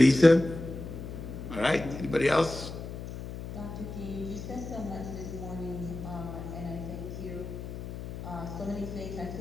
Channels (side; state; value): left; noise; hum, 9 dB below the sound